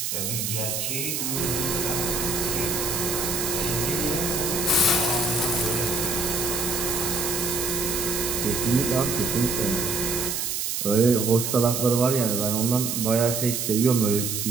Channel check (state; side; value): noise; right; hiss, 1 dB below the sound